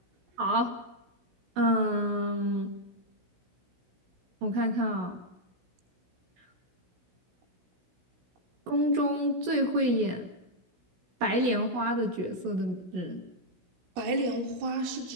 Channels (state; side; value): late; left; 16 ms